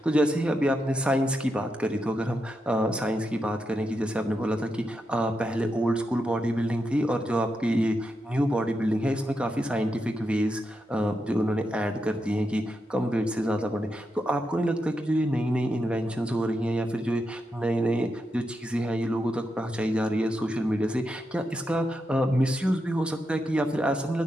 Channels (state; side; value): normal; both; correlation 0.85